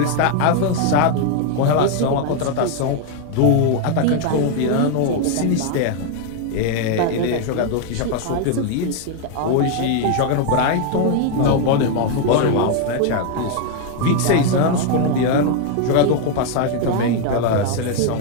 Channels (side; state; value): both; different; correlation 0.01